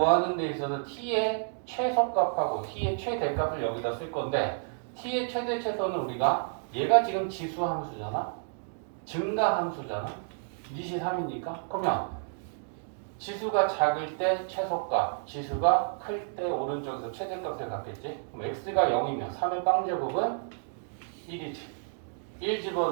데 있어서 t의 최소값하고 t의 최대값을 여기다 쓸 건데 t의 최대 최소는 우리가 얘가 지금 지수 함수잖아? 증가 함수잖아? 니시 3이니까? 그러면 지수가 작을 때 최소값, 지수가 클 때 오른쪽에서 최대값을 갖겠지? 그럼 x가 0이면 3의 빵제곱은 1이지. 1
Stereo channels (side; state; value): left; silent; digital silence